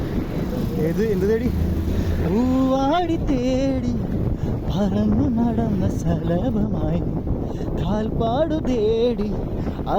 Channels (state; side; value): identical; both; correlation 1.00